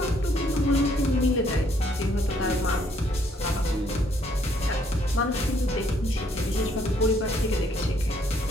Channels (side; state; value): both; normal; correlation 0.67